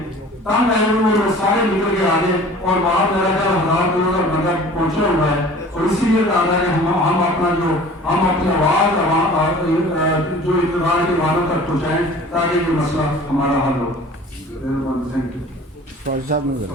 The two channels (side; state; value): both; normal; correlation 0.45